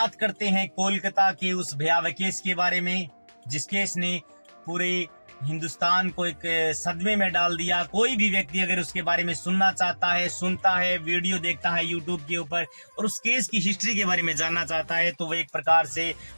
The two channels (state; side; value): inverted; both; correlation -1.00